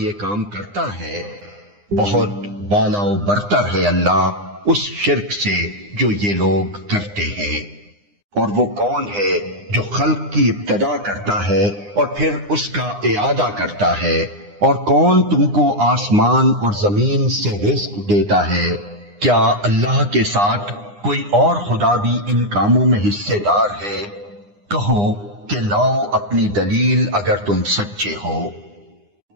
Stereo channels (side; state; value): left; late; 9.8 ms